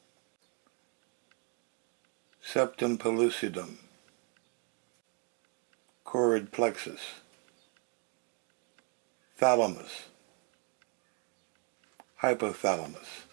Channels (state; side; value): quieter; left; 36.1 dB